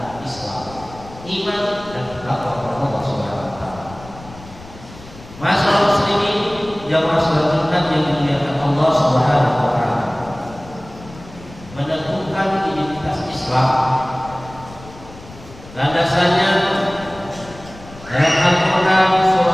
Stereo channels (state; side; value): noise; left; rumble, 18 dB below the sound